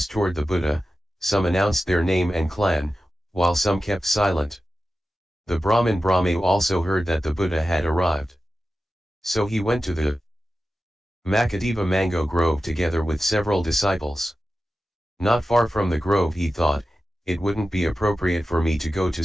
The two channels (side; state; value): both; normal; correlation 0.93